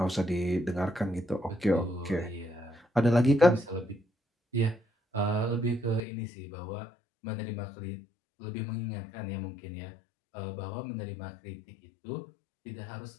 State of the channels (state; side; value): drops out; right; at 6.0 s